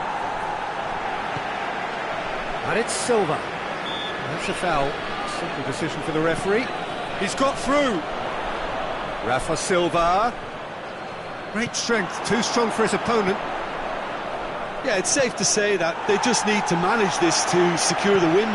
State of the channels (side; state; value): both; identical; correlation 1.00